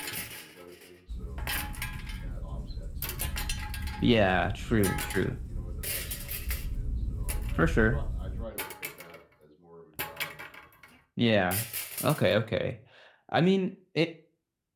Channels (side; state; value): both; identical; correlation 1.00